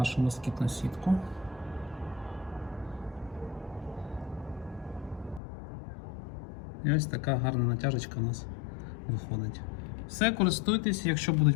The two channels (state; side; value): drops out; right; at 5.4 s